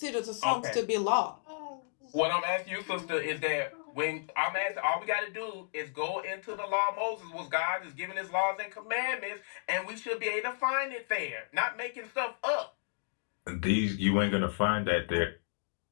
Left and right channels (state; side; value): silent; right; digital silence